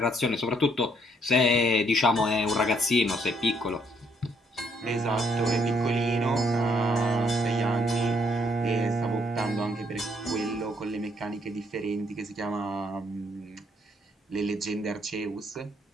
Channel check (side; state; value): both; normal; correlation 0.69